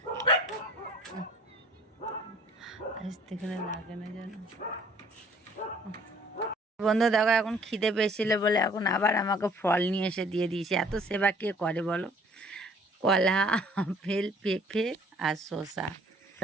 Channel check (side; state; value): both; normal; correlation 0.56